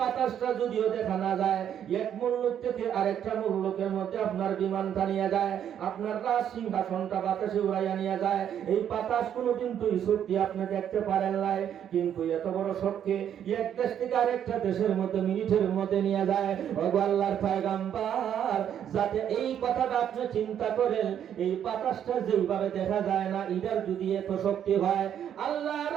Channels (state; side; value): quieter; left; 9.5 dB